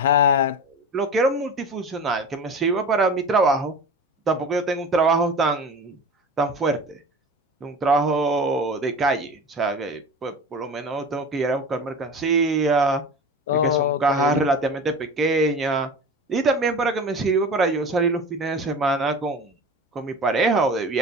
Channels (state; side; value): normal; both; correlation 0.34